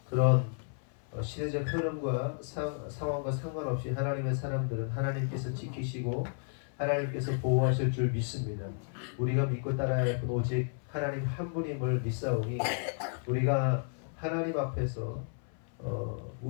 그런 시대적 흐름과 상황과 상관없이 하나님의 사람들은 하나님께서 지키시고 하나님께서 보호하실 줄 믿습니다. 우리가 믿고 따라야 할 분 오직 하나님 한 분임을 믿사오니 우리가 하나님 앞에서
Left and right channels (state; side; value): silent; right; 56 dB below the other